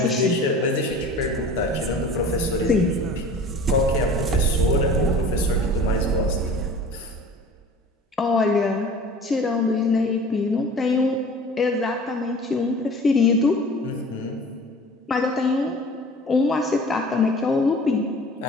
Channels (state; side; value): normal; both; correlation 0.43